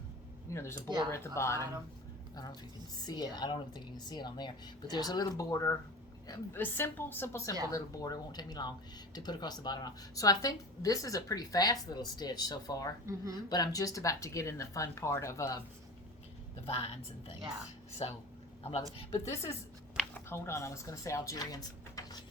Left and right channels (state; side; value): normal; both; correlation 0.34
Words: there's a border at the bottom. I don't know if you can see it. I don't even think you can see it on there. But there's a little border, a simple little border. It won't take me long to put across the bottom. So I think this is a pretty fast little stitch so far. But I'm just about to get in the fun part of the vines and things. Yeah. So I'm loving it. But this is, hold on, I was going to say Algerian